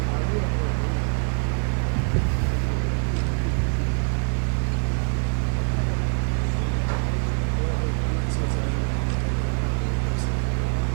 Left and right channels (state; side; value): silent; left; digital silence